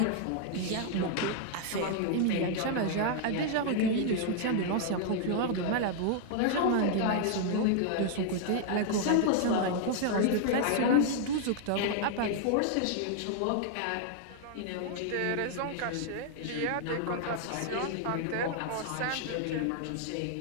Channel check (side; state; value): both; different; correlation 0.00